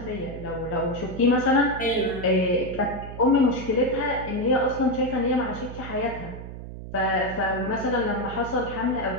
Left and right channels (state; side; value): noise; right; hum, 11 dB below the sound